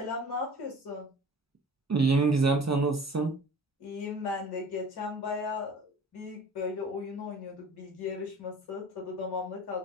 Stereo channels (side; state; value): both; normal; correlation 0.45